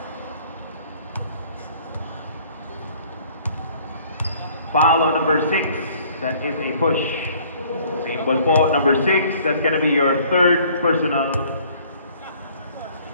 Foul on number 6. That is a push. Same ball po. Number 6. That's going to be your third personal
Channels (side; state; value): both; inverted; correlation -0.57